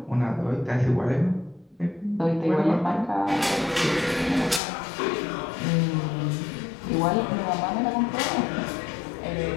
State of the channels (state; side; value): drops out; right; at 4.6 s